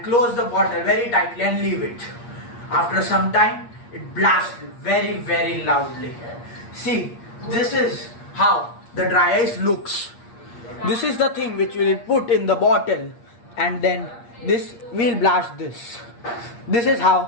close the bottle very tightly and leave it. After some time, it blasts very loudly. See, this is how the dry ice looks. This is the thing which we will put in the bottle and then this will blast this. This is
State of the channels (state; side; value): late; right; 8.5 ms